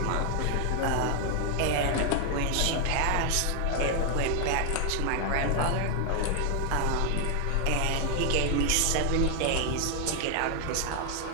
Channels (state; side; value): different; both; correlation 0.00